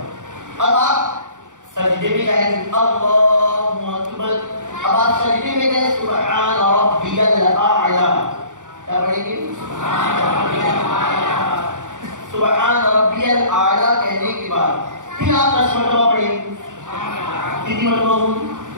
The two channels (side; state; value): left; late; 0.86 ms